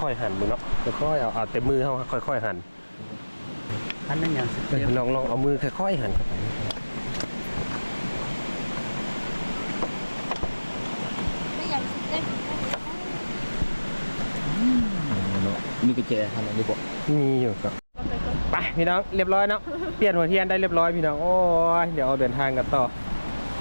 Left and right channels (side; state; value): both; inverted; correlation -1.00